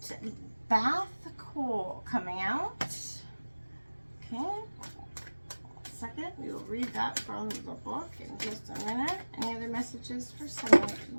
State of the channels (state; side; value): inverted; both; correlation -1.00